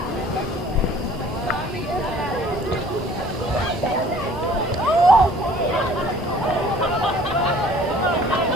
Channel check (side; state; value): both; normal; correlation 0.52